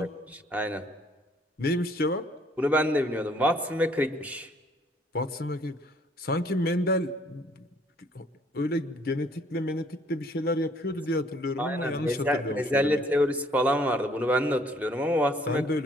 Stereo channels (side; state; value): both; normal; correlation 0.62